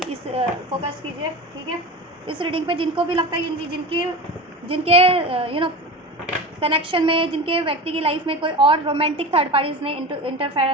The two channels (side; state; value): both; normal; correlation 0.29